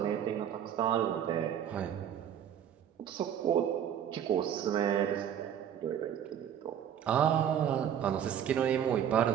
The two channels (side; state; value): left; quieter; 9.3 dB